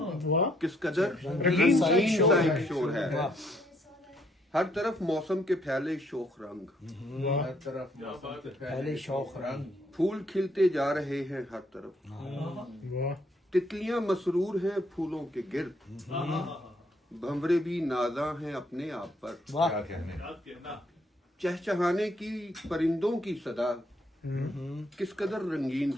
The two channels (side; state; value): both; normal; correlation 0.70